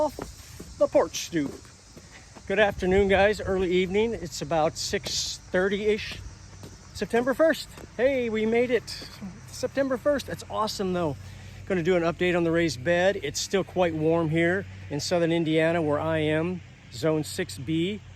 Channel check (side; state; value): both; identical; correlation 1.00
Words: the porch stoop. Good afternoon, guys. Early evening. It's about 6:30-ish. September 1st. Hey, we made it. September 1st. That's awesome, though. Going to do an update on the raised bed. It's still quite warm here in southern Indiana where I am, zone 6B.